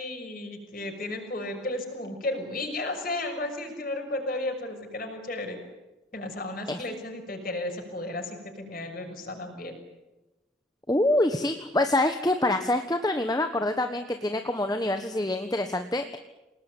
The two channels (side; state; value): both; normal; correlation 0.55